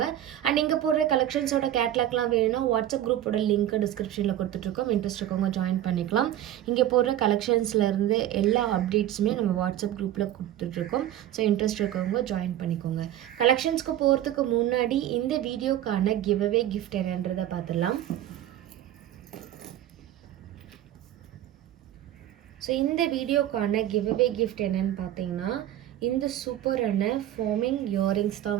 அண்ட் இங்கே போடுற கலெக்ஷன்ஸோட கேட்லாக்லாம் வேணும்னா வாட்ஸ்அப் குரூப்போட லிங்க் டிஸ்கிரிப்ஷனில் கொடுத்துட்ருக்கோம். இன்ட்ரெஸ்ட் இருக்கவங்க ஜாயின் பண்ணிக்கலாம். இங்கே போடுற கலெக்ஷன்ஸ்லேருந்து எல்லா அப்டேட்ஸுமே நம்ம வாட்ஸ்அப் குரூப்பில் கொடுத்துட்ருக்கோம். ஸோ இன்ட்ரெஸ்ட் இருக்கவங்க ஜாயின் பண்ணிக்கோங்க. கலெக்ஷன்ஸ்க்கு போகிறதுக்கு முன்னாடி இந்த வீடியோக்கான கிவ்அவே கிஃப்ட் என்னன்றதை பார்த்துடலாம். ஸோ இந்த வீடியோக்கான கிவ்அவே கிஃப்ட் என்னன்னு பார்த்தீங்கன்னா இந்த சூப்பரான ஃபார்மிங் இயரிங்ஸ் தான்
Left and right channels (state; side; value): quieter; left; 12.3 dB